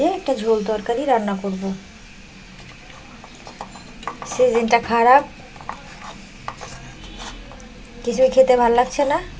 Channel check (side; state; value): both; identical; correlation 1.00